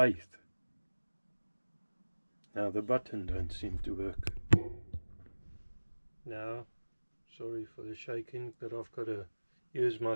Now the button don't seem to work. Now, sorry for the shaking, but I've got to use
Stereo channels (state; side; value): inverted; both; correlation -1.00